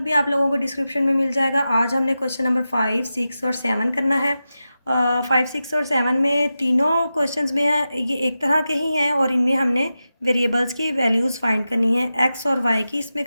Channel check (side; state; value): both; inverted; correlation -0.92